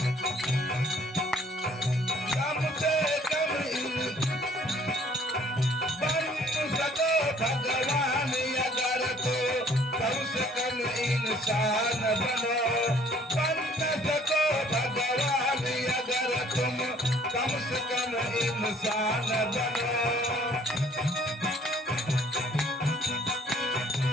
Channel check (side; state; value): both; normal; correlation 0.58